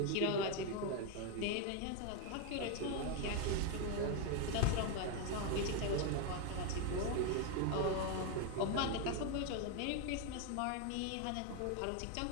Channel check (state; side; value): different; both; correlation 0.02